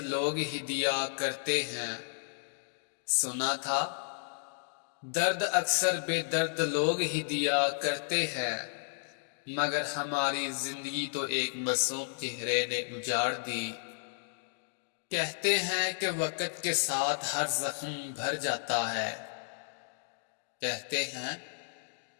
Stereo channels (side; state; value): right; silent; digital silence